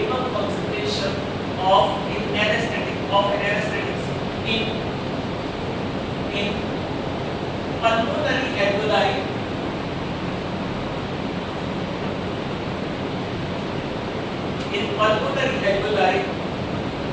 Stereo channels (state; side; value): identical; both; correlation 1.00